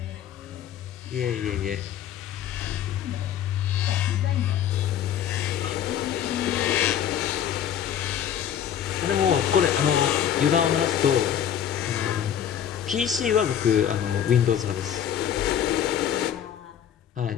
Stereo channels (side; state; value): right; quieter; 9.7 dB